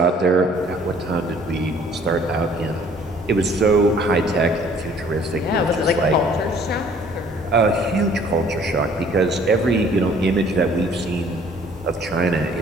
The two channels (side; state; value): both; normal; correlation 0.56